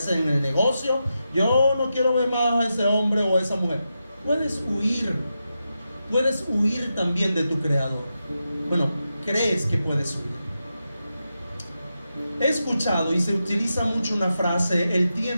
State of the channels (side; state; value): both; inverted; correlation -0.88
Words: en el negocio. Yo no quiero ver más a ese hombre o a esa mujer. Puedes huir. Puedes huir también de tu Creador. Bueno, crees que puedes huir. He escuchado y se utiliza mucho una frase: el